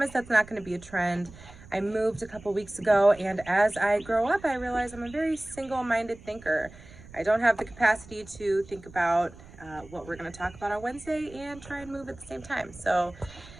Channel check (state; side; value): noise; right; rumble, 20 dB below the sound